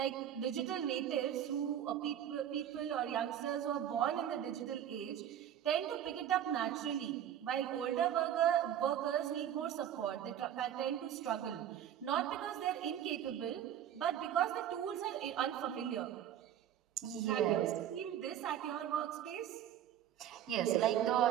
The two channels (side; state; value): left; quieter; 10.4 dB